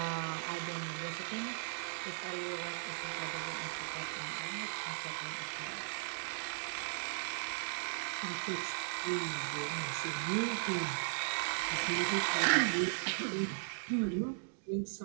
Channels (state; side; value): silent; left; digital silence